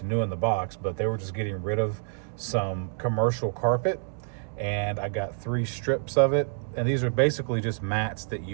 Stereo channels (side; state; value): left; silent; digital silence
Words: new in the box, but they were just getting rid of some commercial carpet. And I got 3 strips of it. And these are basically just mats that